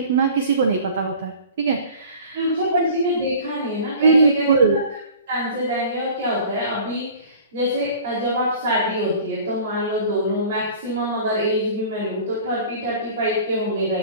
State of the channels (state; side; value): inverted; both; correlation -0.44